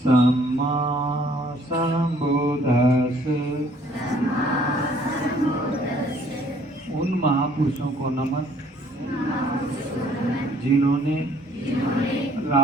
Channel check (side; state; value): both; normal; correlation 0.60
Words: सम्मा संबुद्धस्स। उन महापुरुषों को नमन जिन्होंने